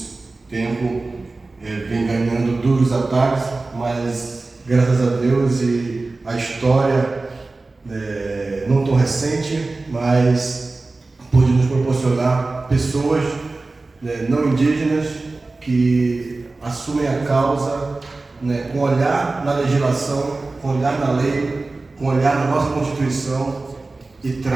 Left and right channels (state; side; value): quieter; left; 3.4 dB